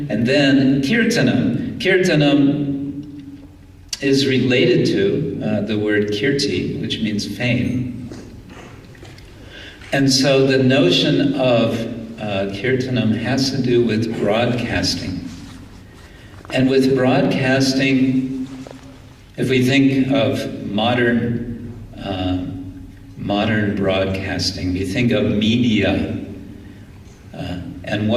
and then kirtanam. Kirtanam is related to the word kirti, which means fame. And so the notion of kirtanam has to do with broadcasting. And with broadcasting, if we think of modern broadcasting, we think of media, and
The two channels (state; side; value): identical; both; correlation 1.00